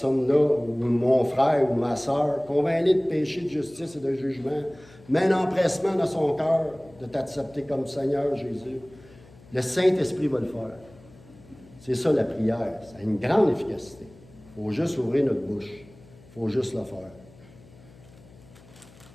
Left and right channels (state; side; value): noise; left; hum, 24 dB below the sound